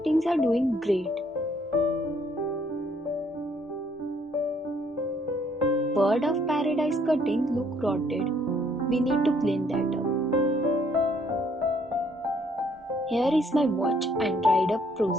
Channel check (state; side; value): normal; both; correlation 0.65